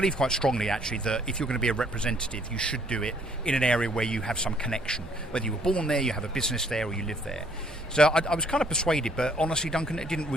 quite strongly, actually, that if you're going to be a representative, you should do it in an area where you have some connection. Whether you were born there, you have a business there, or you live there. So I was kind of persuaded, but honestly, Duncan, it didn't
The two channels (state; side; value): normal; both; correlation 0.64